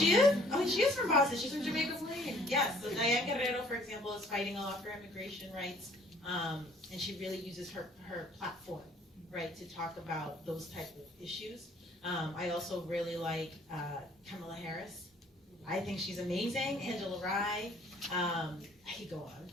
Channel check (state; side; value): normal; both; correlation 0.58